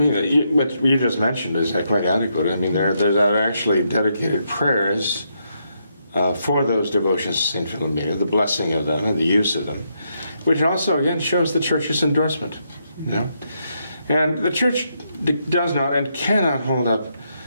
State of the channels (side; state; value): both; inverted; correlation -0.79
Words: what you just mentioned is quite adequate. I mean, there are actually dedicated prayers for those devotions to Saint Philomena, the blessing of them and the use of them, which also, again, shows the Church's endorsement. And the Church does not and cannot hold up